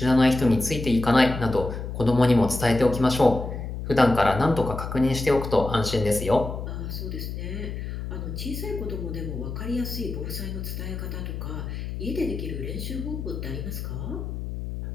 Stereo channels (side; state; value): left; noise; hum, 6 dB below the sound